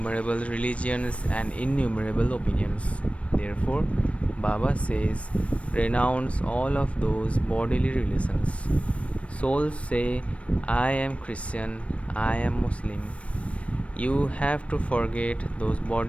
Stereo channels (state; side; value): late; right; 0.063 ms